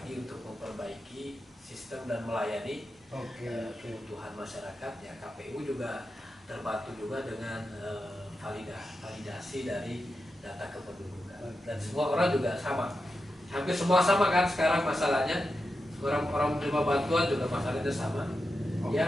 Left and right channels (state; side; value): normal; both; correlation 0.89